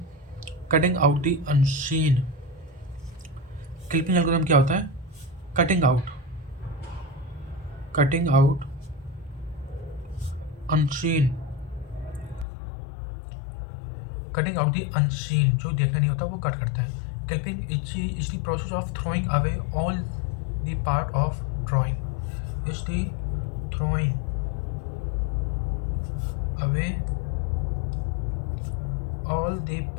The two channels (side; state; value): right; drops out; at 12.5 s